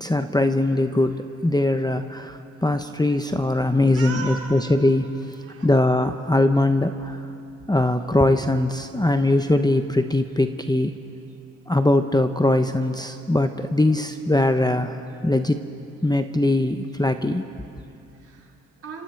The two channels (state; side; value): normal; both; correlation 0.85